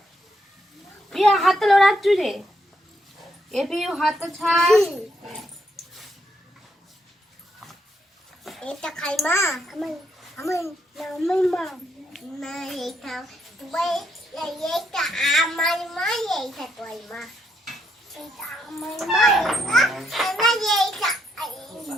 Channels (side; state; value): both; normal; correlation 0.76